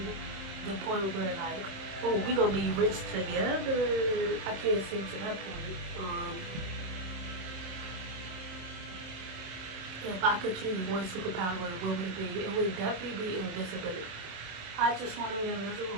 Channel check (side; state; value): left; late; 27 ms